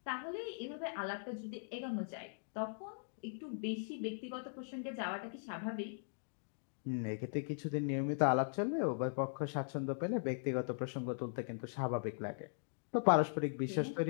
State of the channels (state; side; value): silent; right; digital silence